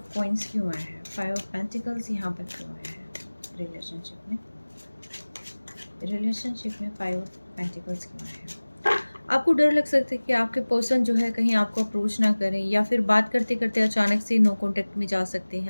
कॉइन्स क्यों आया है? 5 ऑफ पेंटिकल्स यहाँ पर क्यों आया है रिलेशनशिप में? रिलेशनशिप में 5 ऑफ पेंटिकल्स क्यों आया है? आपको डर लग सकता है कि आपके पर्सन जो है कहीं आपको अप्रोच ना करें, या फिर बात करते-करते अचानक से नो कॉन्टैक्ट में जा सकते हैं,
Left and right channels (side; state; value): both; inverted; correlation -1.00